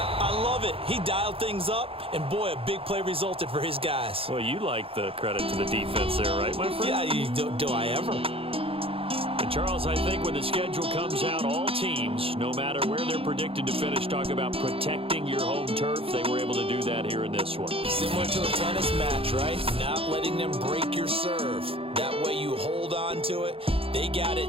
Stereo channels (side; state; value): left; late; 0.27 ms